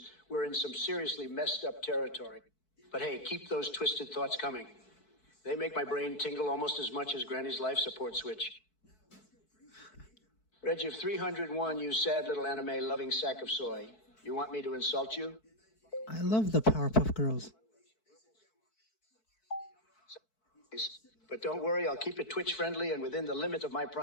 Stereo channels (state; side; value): late; right; 4.6 ms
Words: we're in some seriously messed up territory. But hey, keep those twisted thoughts coming. They make my brain tingle almost as much as Granny's life support switch. Reggie of 301, you sad little anime-loving sack of soy. You want me to insult you? I love the Powerpuff Girls. But don't worry, I'll keep it Twitch-friendly and within the limit of my